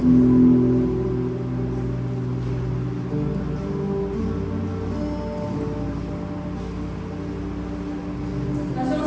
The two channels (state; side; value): identical; both; correlation 1.00